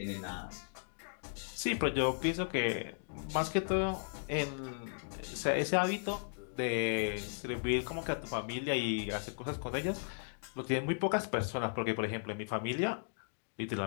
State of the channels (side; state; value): right; silent; digital silence